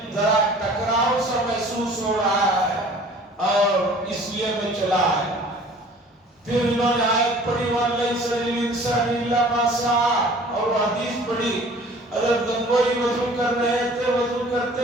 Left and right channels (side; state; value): both; normal; correlation 0.49